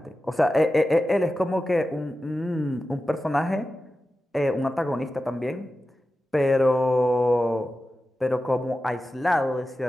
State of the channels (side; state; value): both; normal; correlation 0.93